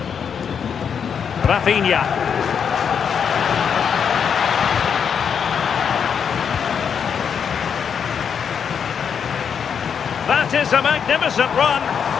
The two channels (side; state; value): right; quieter; 7.2 dB